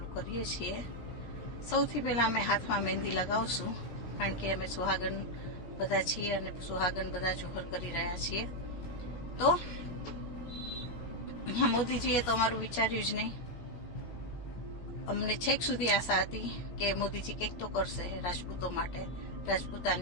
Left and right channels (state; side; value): late; right; 17 ms